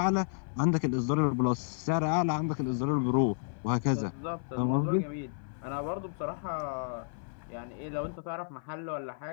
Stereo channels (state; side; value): silent; right; 57 dB below the other